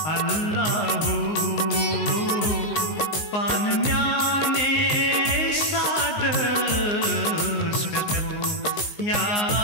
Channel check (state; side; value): late; right; 19 ms